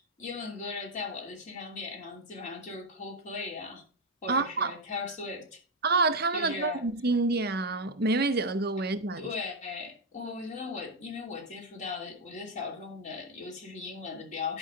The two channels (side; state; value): both; normal; correlation 0.03